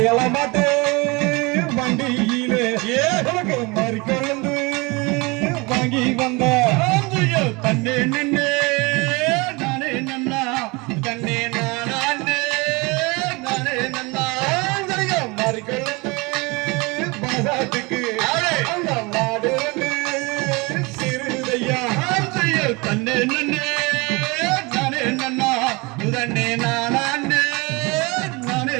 மாட்டு வண்டியிலே உனக்கு மறிக்கொழுந்து வாங்கி வந்த தன்னே நின்னே நானே நன்னா தன்னே நானே நானே நன்னா மறிக்கொழுந்து பாசாத்துக்கு அந்த மாடு சிறுதையா தன்னே நின்னே நானே நன்னா தன்னே நானே நானே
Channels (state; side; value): quieter; left; 26.3 dB